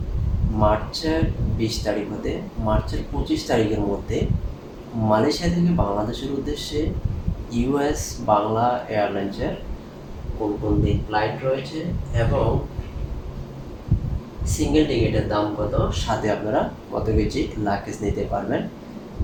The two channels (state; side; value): identical; both; correlation 1.00